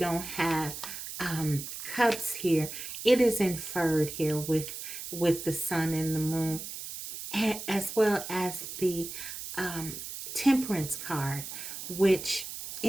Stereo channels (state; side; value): noise; right; hiss, 9 dB below the sound